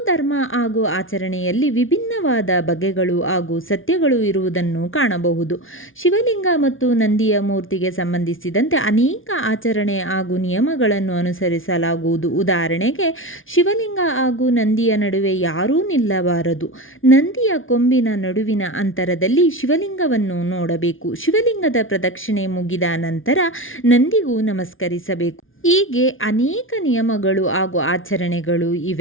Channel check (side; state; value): right; late; 0.58 ms